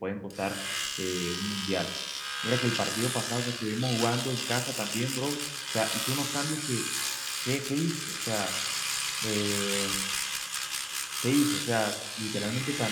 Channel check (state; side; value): identical; both; correlation 1.00